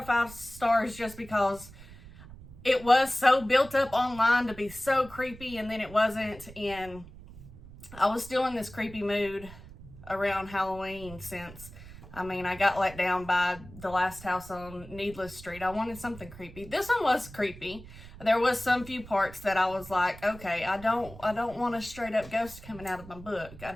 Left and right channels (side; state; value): right; noise; rumble, 17 dB below the sound